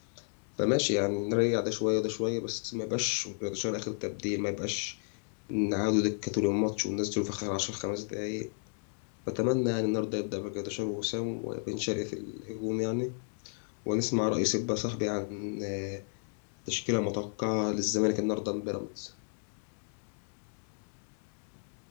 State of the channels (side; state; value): right; silent; digital silence